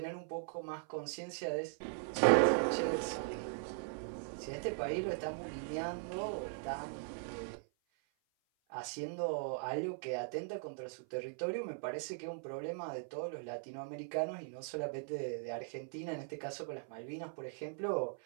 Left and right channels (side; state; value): left; silent; 51 dB below the other